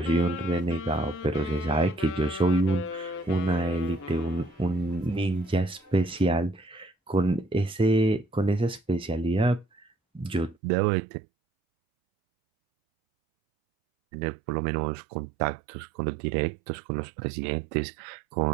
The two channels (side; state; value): left; drops out; at 10.6 s